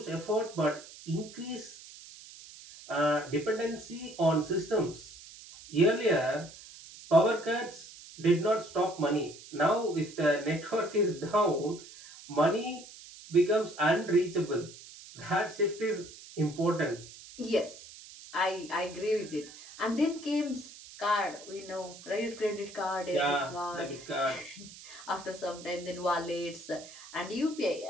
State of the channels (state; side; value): noise; right; hiss, 17 dB below the sound